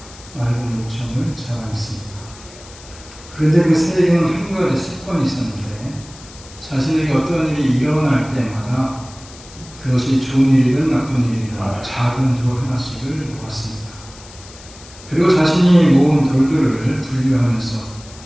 맑은 목청을 자랑했습니다. 그런데 그 새에게는 한 가지 습관이 있었는데 자신에게 어떤 일이 일어날 때마다 그것이 좋은 일이든 나쁜 일이든 작은 돌 하나씩을 모았습니다. 그리고 자신이 모은 돌들을 분류하면서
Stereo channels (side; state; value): left; noise; hiss, 20 dB below the sound